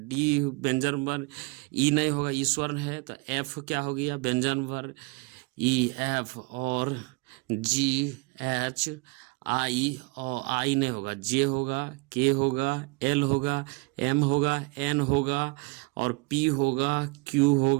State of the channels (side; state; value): left; quieter; 27.7 dB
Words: डी व्यंजन वर्ण, ई नहीं होगा, ई स्वर्ण है, तो एफ क्या हो गया, व्यंजन वर्ण, ई एफ और GH आई, और आई नहीं होगा, जे होगा, के होगा, एल होगा, एम होगा, एन होगा और पी होगा, क्यू